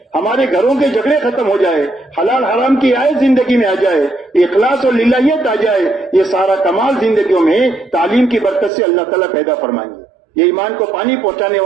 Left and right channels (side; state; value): left; drops out; at 8.7 s